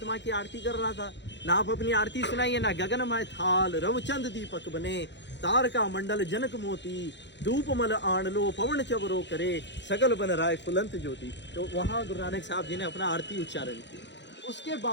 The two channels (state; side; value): late; right; 0.52 ms